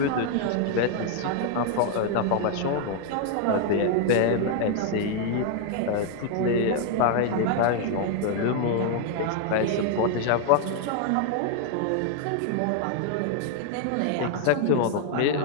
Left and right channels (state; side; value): different; both; correlation 0.00